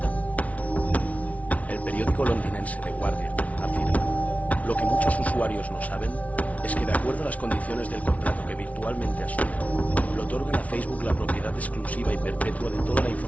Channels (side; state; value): right; late; 0.068 ms